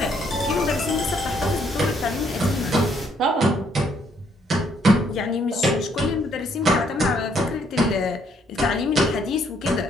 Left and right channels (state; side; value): normal; both; correlation 0.69